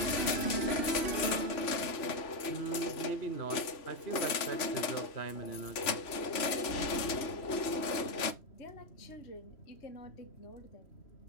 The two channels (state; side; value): late; right; 3.1 ms